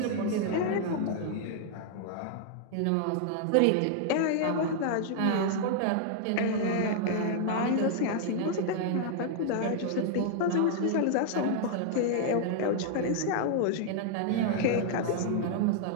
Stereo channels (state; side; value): different; both; correlation -0.01